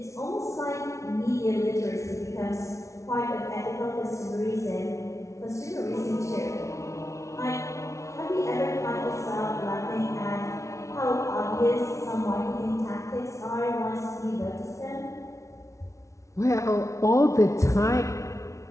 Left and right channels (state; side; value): late; right; 0.14 ms